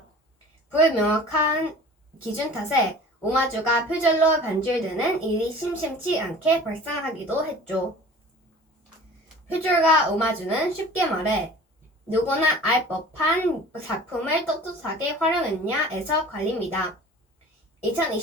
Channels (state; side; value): normal; both; correlation 0.43